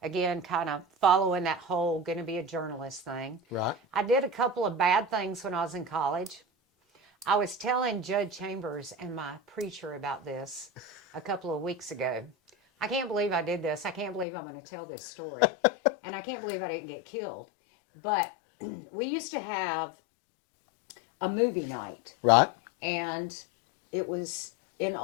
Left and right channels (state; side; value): drops out; right; at 14.2 s